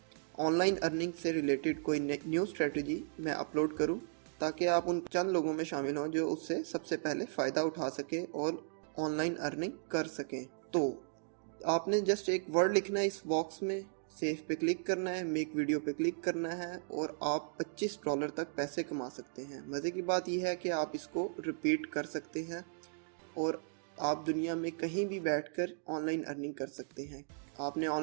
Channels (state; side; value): silent; left; digital silence